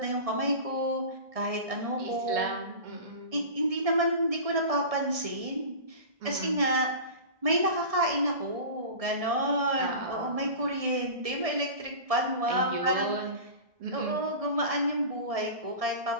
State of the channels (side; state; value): left; late; 1.7 ms